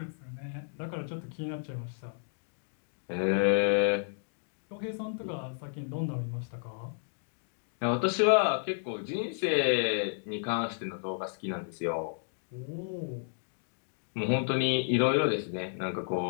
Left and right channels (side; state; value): right; silent; digital silence